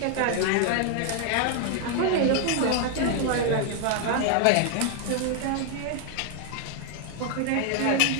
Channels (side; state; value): both; different; correlation 0.00